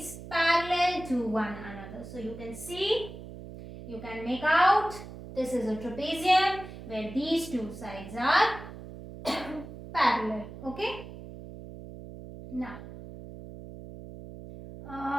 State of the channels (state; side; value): noise; right; hum, 13 dB below the sound